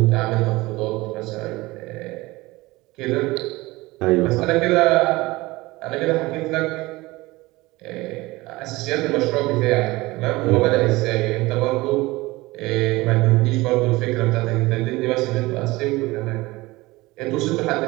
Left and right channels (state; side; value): quieter; left; 20.7 dB